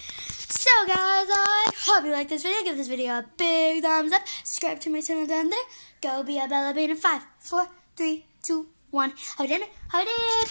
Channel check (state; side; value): inverted; both; correlation -1.00